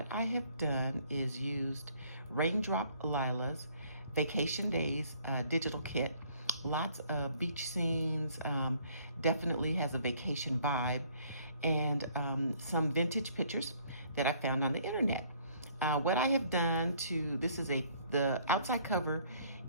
I have done is used Raindrop Lila's Vacation Days digital kit. Lots of beach scenes, definitely has a vacation vibe, and some vintage pictures that I found on the internet. What I have done this is the outside cover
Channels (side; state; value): both; inverted; correlation -0.61